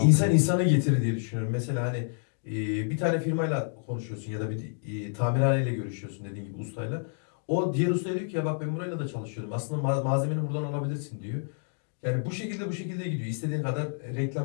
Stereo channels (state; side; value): silent; right; digital silence